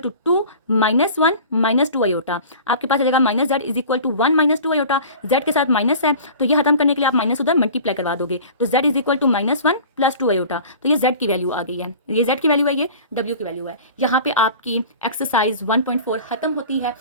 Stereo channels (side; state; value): both; inverted; correlation -0.41